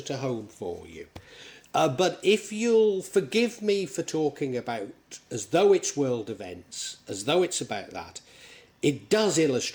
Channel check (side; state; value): both; identical; correlation 1.00